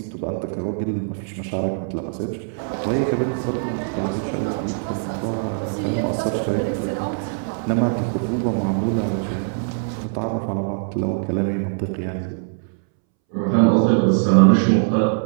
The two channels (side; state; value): left; silent; 64 dB below the other